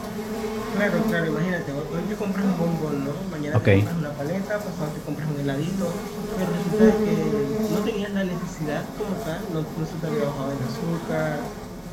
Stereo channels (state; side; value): identical; both; correlation 1.00